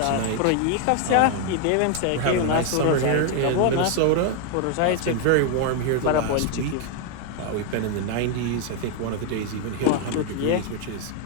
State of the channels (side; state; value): both; different; correlation 0.00